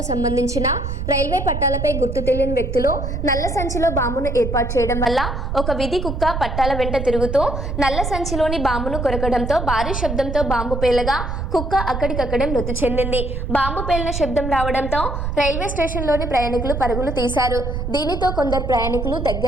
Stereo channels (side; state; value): right; noise; rumble, 3 dB below the sound